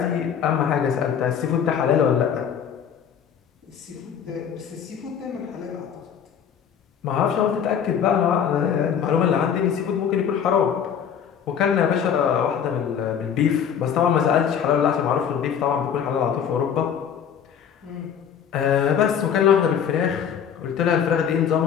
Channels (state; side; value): quieter; right; 8.1 dB